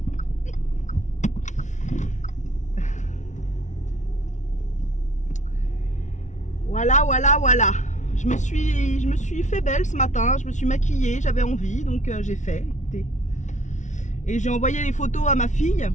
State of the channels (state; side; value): late; right; 0.36 ms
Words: Voilà. Je me suis fait belle ce matin, je me suis maquillée, j'avais envie, donc j'ai fait. Et j'ai envoyé les photos à ma fille